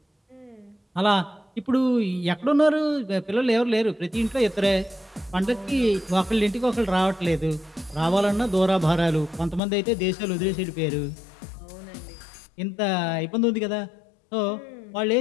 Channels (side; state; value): right; drops out; at 9.6 s